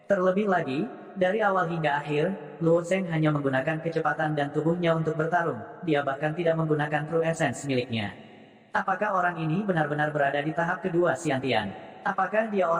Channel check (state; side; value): identical; both; correlation 1.00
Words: Terlebih lagi, dari awal hingga akhir, Luo Zheng hanya menggunakan kecepatan dan tubuhnya untuk bertarung. Dia bahkan tidak menggunakan True Essence miliknya. Apakah orang ini benar-benar berada di tahap kedua Xiantian? Apakah dia